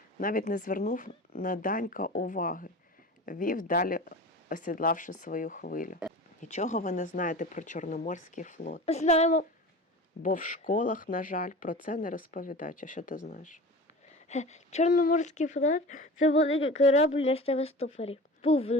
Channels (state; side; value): normal; both; correlation 0.36